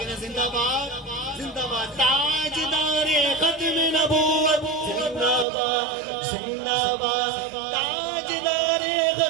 ہے؟ زندہ باد زندہ باد. تاجدار ختم نبوت زندہ باد زندہ باد. تاجدار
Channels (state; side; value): drops out; left; at 5.5 s